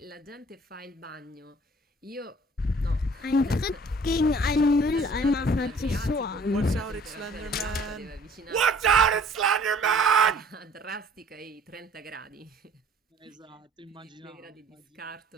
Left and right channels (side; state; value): both; normal; correlation 0.54